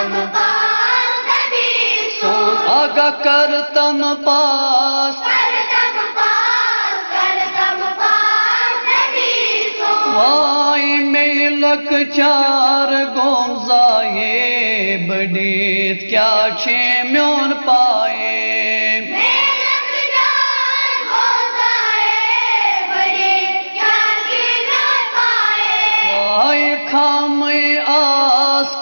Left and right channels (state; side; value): inverted; both; correlation -1.00